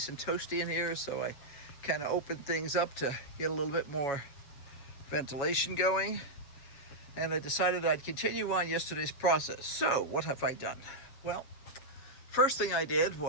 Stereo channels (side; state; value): right; late; 7.2 ms